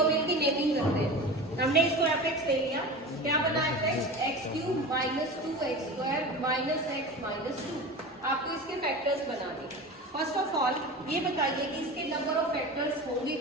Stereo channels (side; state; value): both; normal; correlation 0.31